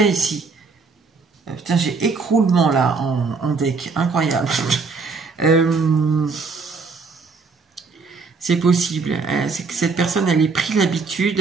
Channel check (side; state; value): left; quieter; 4.6 dB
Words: ici. Putain, j'ai écroulement là en deck, incroyable. C'est possible, c'est que cette personne, elle ait pris